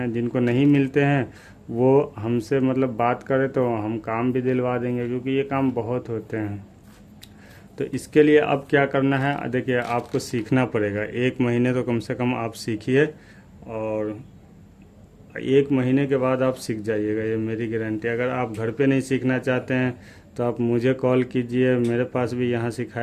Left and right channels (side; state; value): both; identical; correlation 1.00